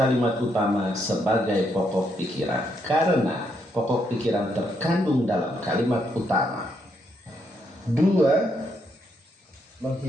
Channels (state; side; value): normal; both; correlation 0.76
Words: utama sebagai pokok pikiran, karena pokok pikiran terkandung dalam kalimat utama. 2.